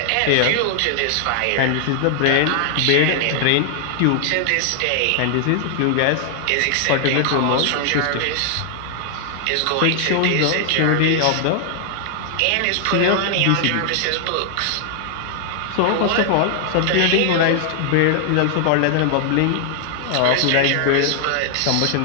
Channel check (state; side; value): different; both; correlation 0.00